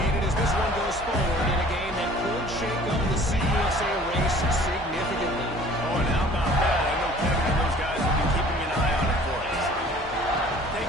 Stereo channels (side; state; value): both; normal; correlation 0.51